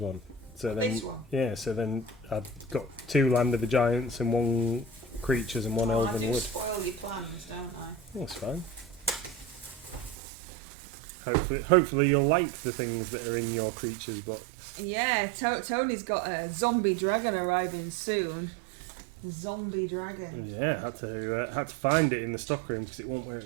one." So then, This one. yeah, so then I've got 2 Land of the Giants and 1 creatures and 1 I Elven do Wood. spoil your plans, don't I? That's fine. Hopefully you'll like the things that are in your creatures box. Yeah, Tony's got a zombie dragon arriving soon. Zombie dragon. Yeah, had to find it in the stockroom because it wasn't where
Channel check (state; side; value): drops out; left; at 10.2 s